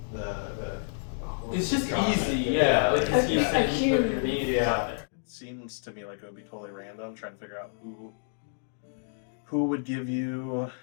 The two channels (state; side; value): silent; right; digital silence